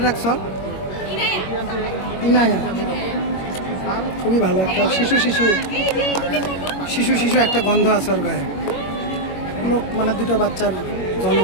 রাখছো? ইনায়া। খুবই ভালো একটা শিশু শিশু শিশু শিশু একটা গন্ধ আছে ওর গায়ে। লোক মানে দুটো বাচ্চার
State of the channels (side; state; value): right; late; 21 ms